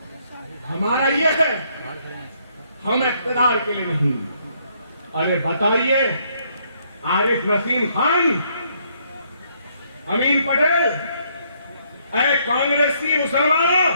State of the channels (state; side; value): inverted; both; correlation -0.70